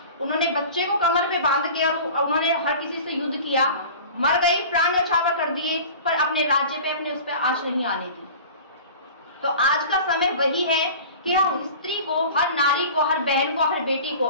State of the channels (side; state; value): both; inverted; correlation -0.39